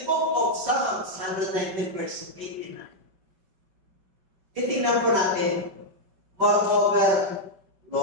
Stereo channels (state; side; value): late; left; 5.2 ms